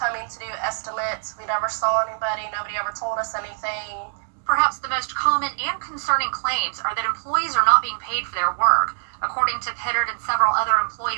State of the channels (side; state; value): left; silent; digital silence